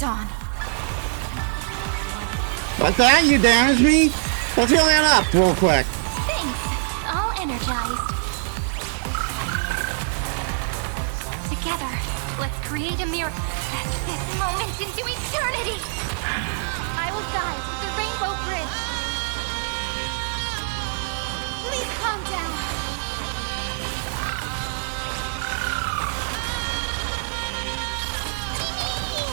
What's that? You damaged me? Let's heal that up real quick. Thanks. All energized. Together, let's create a mirror. This moment into eternity. I will guide the Rainbow Bridge. Please calm down.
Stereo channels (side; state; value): left; silent; digital silence